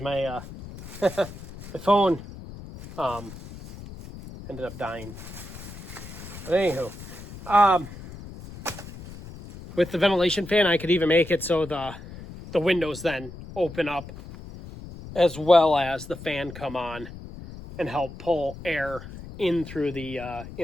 my phone ended up dying. But anywho, with the ventilation fan, I could even make it so the windows then open up as well as the fan come on and help pull air in through the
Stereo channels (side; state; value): left; noise; rumble, 14 dB below the sound